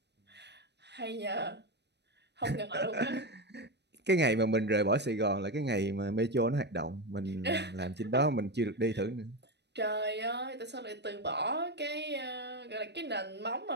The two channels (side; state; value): left; late; 0.50 ms